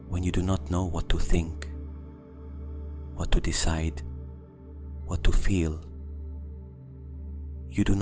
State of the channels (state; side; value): identical; both; correlation 1.00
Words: when you do not know what to think, what to decide, what to feel, you do